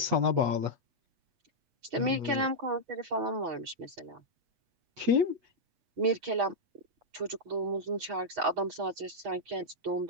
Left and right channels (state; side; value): late; left; 8.2 ms